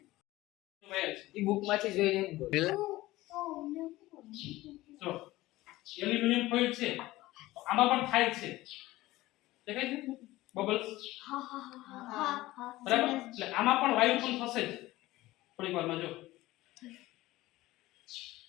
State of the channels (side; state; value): right; quieter; 17.8 dB